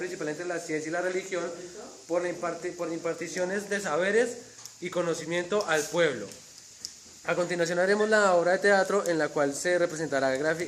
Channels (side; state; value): both; identical; correlation 1.00